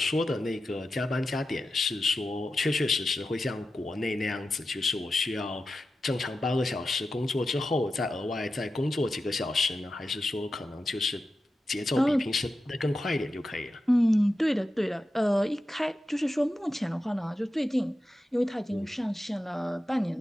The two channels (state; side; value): normal; both; correlation 0.91